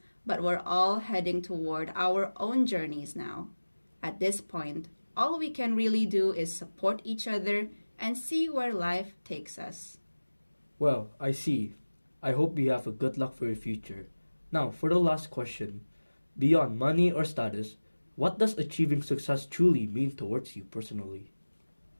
but we're all heading toward our own journeys now. At this point, all we can really do is support each other and see where life takes us. Well, I see. I hope you have a good luck for your future. Now, for the last question. Beyond money or status, what does achieving success truly mean towards you personally?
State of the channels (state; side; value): inverted; both; correlation -1.00